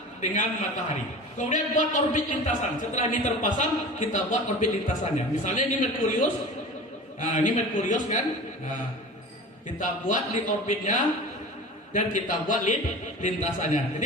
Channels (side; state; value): both; normal; correlation 0.36